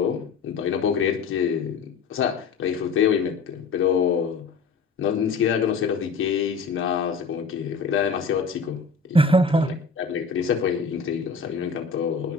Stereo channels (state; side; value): quieter; right; 4.6 dB